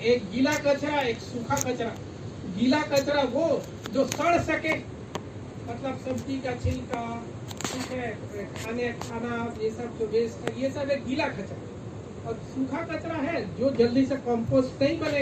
गीला कचरा, एक सूखा कचरा। गीला कचरा वो जो सड़ सके, मतलब सब्जी का छिलका, ठीक है, खाना ये सब जो वेस्ट है, ये सब एक गीला कचरा। और सूखा कचरा है जो जल्दी से कंपोस्ट नहीं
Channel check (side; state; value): both; identical; correlation 1.00